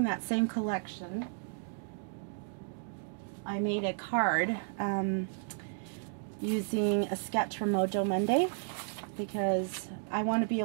that same collection, I made a card using a sketch from Mojo Monday, because I want to be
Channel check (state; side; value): silent; left; digital silence